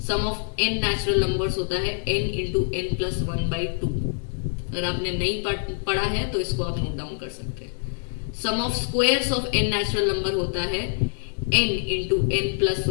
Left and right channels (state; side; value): silent; right; 62 dB below the other